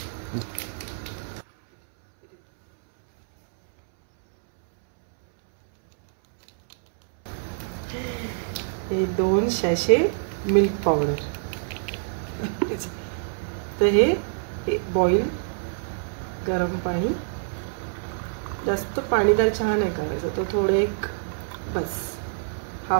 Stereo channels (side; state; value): left; silent; 61 dB below the other